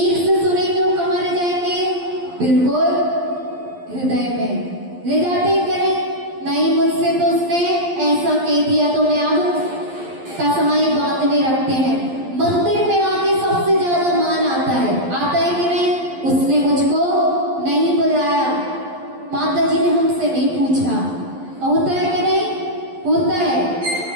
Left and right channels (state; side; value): late; left; 11 ms